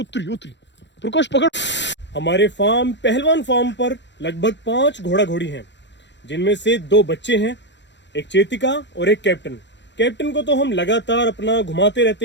उतरी, प्रकाश पकड़। हमारे फार्म पहलवान फार्म पर लगभग 5 घोड़ा घोड़ी हैं, जिनमें से 2 बच्चे हैं, एक चेतिका और एक कैप्टन। कैप्टन को तो हम लगातार अपना घुमाते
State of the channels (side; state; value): right; late; 0.52 ms